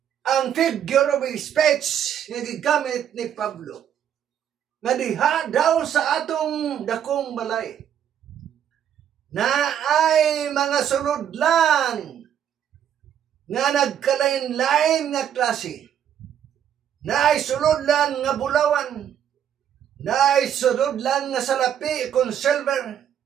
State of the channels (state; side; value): quieter; left; 9.5 dB